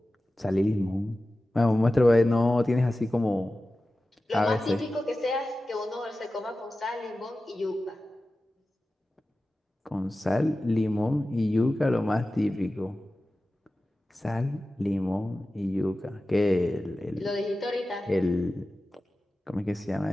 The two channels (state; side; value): normal; both; correlation 0.95